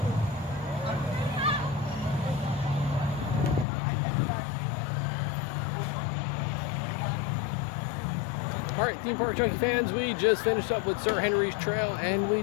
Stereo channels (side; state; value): right; drops out; at 3.7 s